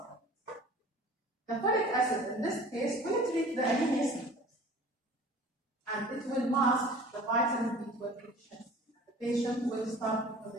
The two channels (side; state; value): both; normal; correlation 0.45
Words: The folic acid in this case will treat the anemia symptoms, and it will mask the vitamin B12 deficiency. The patient will start